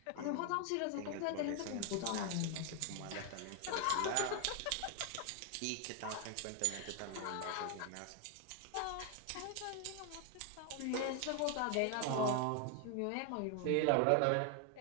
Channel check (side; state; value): both; different; correlation 0.01